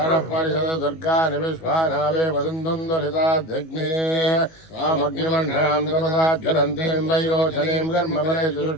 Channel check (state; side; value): late; right; 19 ms